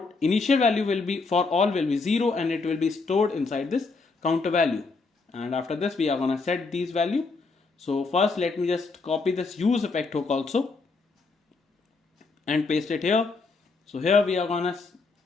Initial value will be for all will be 0, and it will be stored inside this counter value, and after this we are gonna set these value. So first let me just copy this use effect hook also and paste it here. So here we are gonna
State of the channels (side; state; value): right; quieter; 4.1 dB